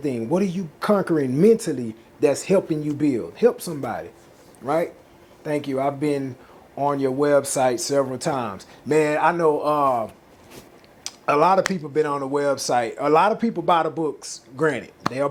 what are you conquering mentally that's helping you build? Help somebody, right? Thank you. I've been on your website several times. Man, I know a lot of people been on the website. A lot of people buy the books, granted. They are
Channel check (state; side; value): identical; both; correlation 1.00